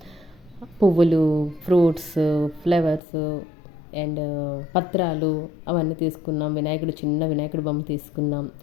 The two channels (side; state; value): right; drops out; at 3.0 s